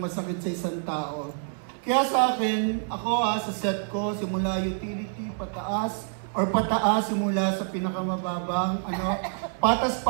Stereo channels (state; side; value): silent; left; 60 dB below the other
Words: masakit sa isang tao. Kaya sa akin, ako sa set ko, simula utility, pataas, simula sa pinakamababang,